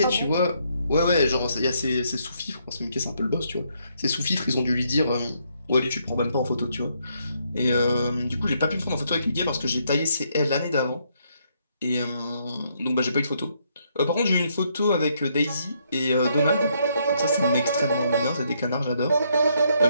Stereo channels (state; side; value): inverted; both; correlation -0.74